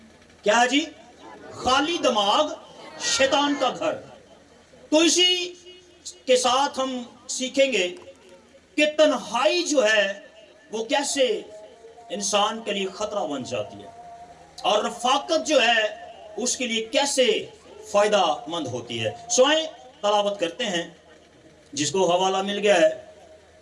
کیا ہے جی؟ خالی دماغ شیطان کا گھر۔ تو اسی کے ساتھ ہم سیکھیں گے کہ تنہائی جو ہے وہ کیسے انسان کے لیے خطرہ بن جاتی ہے، اور رفاقت جو ہے اس کے لیے کیسے فائدہ مند ہوتی ہے۔ سوائیں تلاوت کرتے ہیں، جس کو حوالہ مل گیا ہے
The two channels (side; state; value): both; identical; correlation 1.00